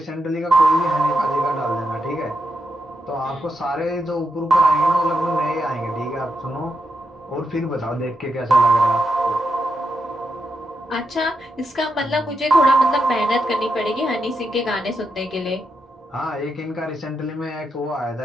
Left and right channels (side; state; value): both; normal; correlation 0.84